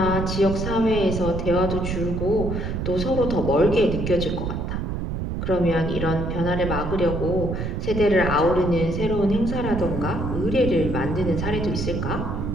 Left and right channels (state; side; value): noise; right; rumble, 3 dB below the sound